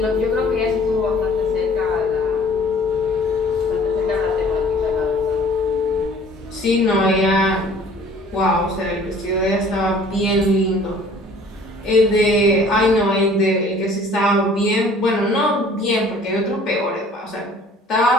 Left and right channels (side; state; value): both; normal; correlation 0.52